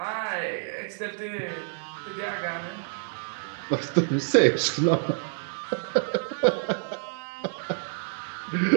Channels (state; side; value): silent; left; 59 dB below the other